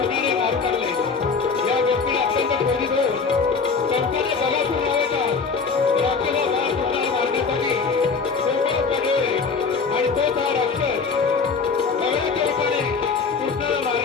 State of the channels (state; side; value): quieter; right; 5.1 dB